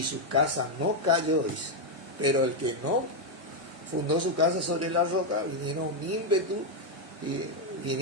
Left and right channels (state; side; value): normal; both; correlation 0.01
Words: su casa no cayó, dice. Pero el que no fundó su casa sobre la roca, vinieron ímpetu, y